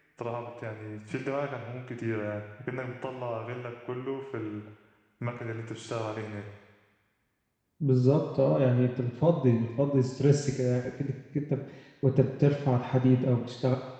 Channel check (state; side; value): identical; both; correlation 1.00